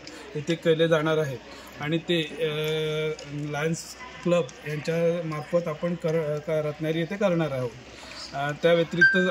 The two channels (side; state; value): both; identical; correlation 1.00